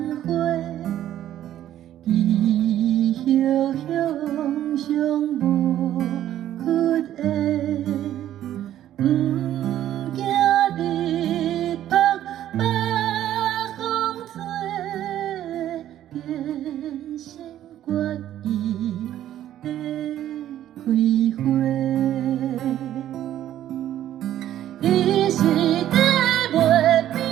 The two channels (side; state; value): left; quieter; 12.1 dB